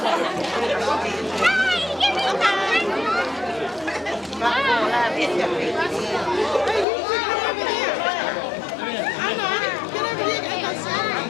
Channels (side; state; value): right; drops out; at 6.9 s